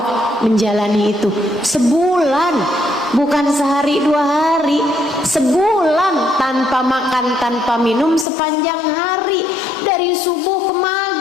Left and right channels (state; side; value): drops out; right; at 8.2 s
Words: menjalani itu. Sebulan, bukan sehari 2 hari, sebulan tanpa makan, tanpa minum sepanjang hari, dari subuh ke